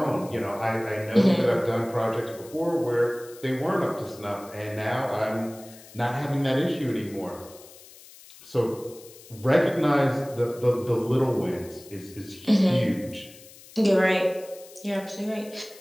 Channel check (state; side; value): noise; left; hiss, 21 dB below the sound